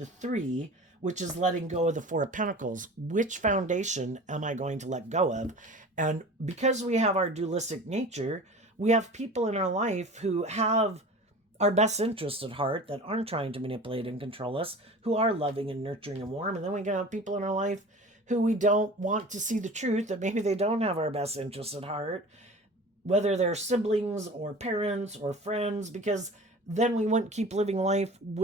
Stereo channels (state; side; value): normal; both; correlation 0.39